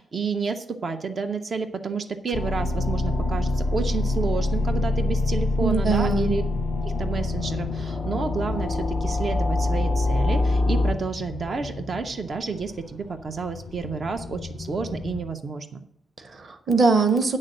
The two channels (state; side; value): normal; both; correlation 0.80